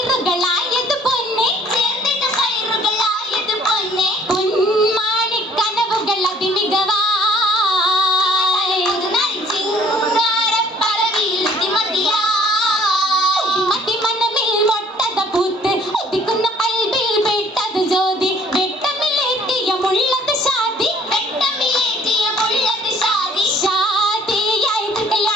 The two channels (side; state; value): both; normal; correlation 0.57